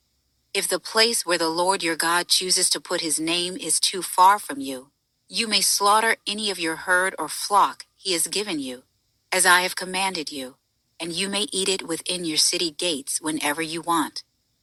If the place where the Lord your God chooses to put his name is too far from you, you may slaughter any of your herd or flock he has given you, as I have commanded you, and you may eat it within your city gates whenever you want.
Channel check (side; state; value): both; identical; correlation 1.00